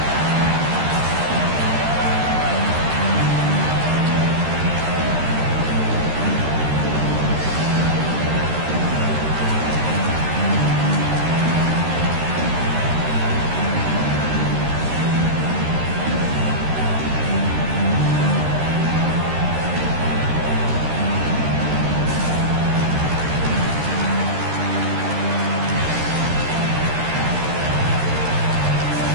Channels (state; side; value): late; left; 13 ms